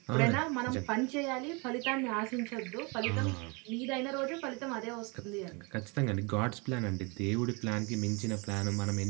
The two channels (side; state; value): left; quieter; 29.8 dB